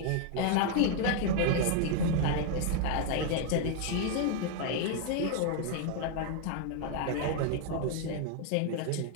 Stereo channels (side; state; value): both; different; correlation 0.00